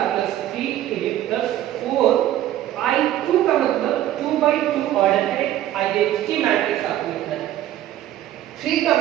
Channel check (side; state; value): left; quieter; 12.9 dB